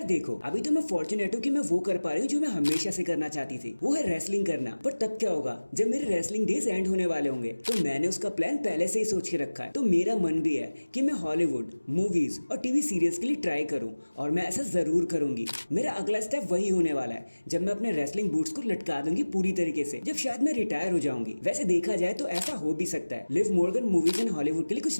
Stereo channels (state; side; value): inverted; both; correlation -1.00